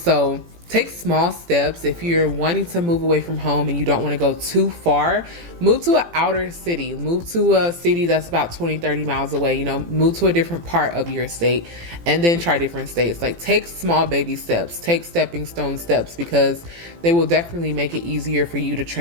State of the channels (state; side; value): late; left; 18 ms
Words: take small steps. If you're wanting to move away from home and you don't want to go too far, move to an outer city. Move to a city that's about 20-30 miles away, you know. Move to a different part of your state and then try different states. Like, take small baby steps, take stepping stone steps, because they will definitely make it easier for you to